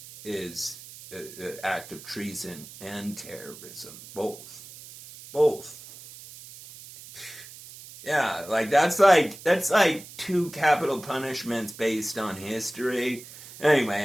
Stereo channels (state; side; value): noise; right; hiss, 16 dB below the sound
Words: is an act of treason and terrorism. Both. Yeah, like that's like 2 capital punishments based on history. Anyway,